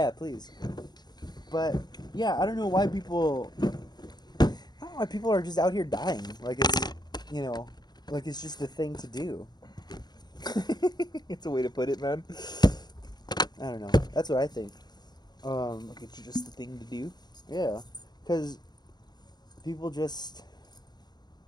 please. But yeah, I don't know why people. I don't know why people are just out here dying. Like it's, like it's just the thing to do. It's a way to put it, man. I don't know. That's what I think. Like it's just the thing to do. Yeah, because people just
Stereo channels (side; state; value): right; late; 0.20 ms